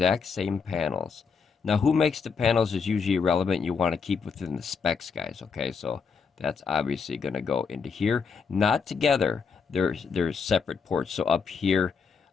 same panels. Now, who makes the panels is usually irrelevant. You want to keep within the specs, guys, okay? So that's obviously going to go into here. Not together. There's separate ports. So up here,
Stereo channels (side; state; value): right; quieter; 5.7 dB